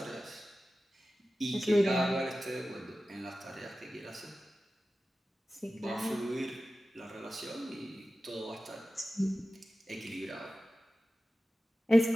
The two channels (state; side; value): normal; both; correlation 0.95